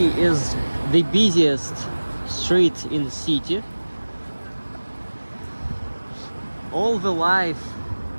is the busiest street in the city. All the life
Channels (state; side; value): inverted; both; correlation -1.00